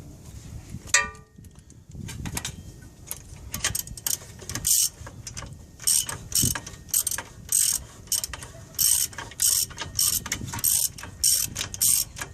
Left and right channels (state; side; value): identical; both; correlation 1.00